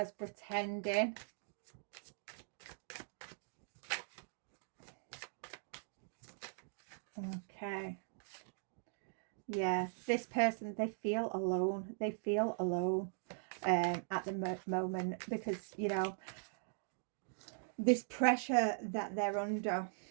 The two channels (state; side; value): silent; left; digital silence